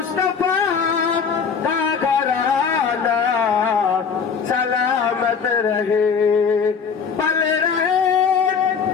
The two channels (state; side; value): quieter; right; 6.1 dB